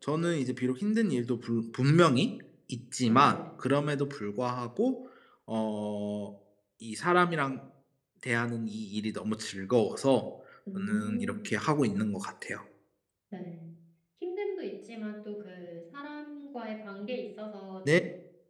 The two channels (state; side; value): identical; both; correlation 1.00